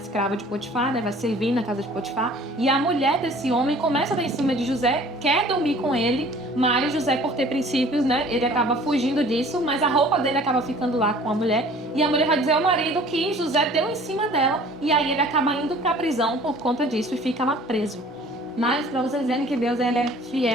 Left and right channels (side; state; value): both; normal; correlation 0.50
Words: de Potifar, né? Vai servir na casa de Potifar. E a mulher desse homem começa a dar em cima de José, quer dormir com ele, mas José, por ter princípios, né? Ele acaba fugindo disso, mas a roupa dele acaba ficando lá com a mulher. E a mulher vai dizer ao marido que José deu em cima dela, e aí ele acaba indo pra prisão por conta disso e fica lá preso. Mas para vocês verem que Deus ele é